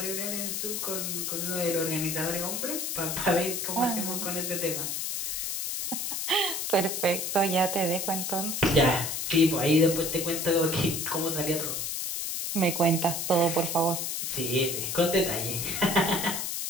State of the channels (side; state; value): left; noise; hiss, 2 dB below the sound